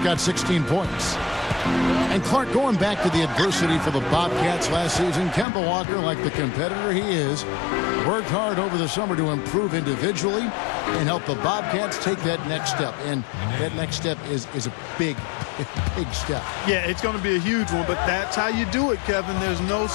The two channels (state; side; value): drops out; right; at 5.5 s